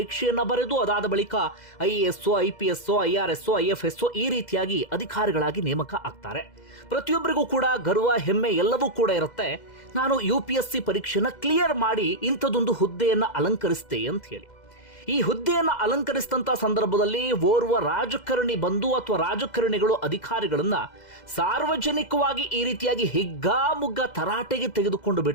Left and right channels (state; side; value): late; right; 2.0 ms